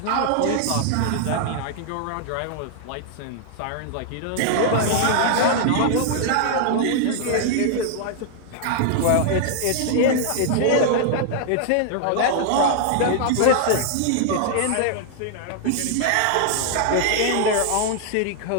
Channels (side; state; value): both; different; correlation -0.01